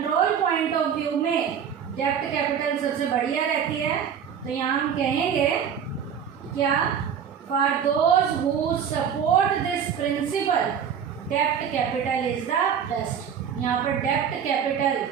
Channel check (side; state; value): left; quieter; 7.9 dB